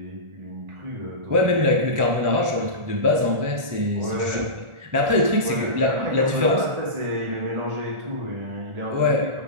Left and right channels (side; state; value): left; late; 1.4 ms